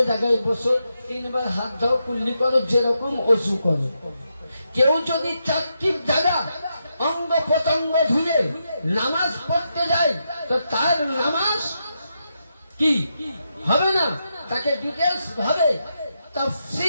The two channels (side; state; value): both; inverted; correlation -0.84